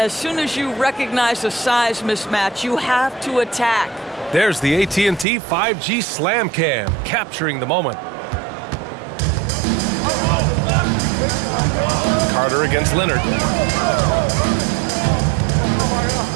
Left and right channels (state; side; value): drops out; left; at 5.2 s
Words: soon as you recognize a size mismatch, you have to attack. There's the AT&T 5G Slam Cam, capturing the moment. Carter against Leonard.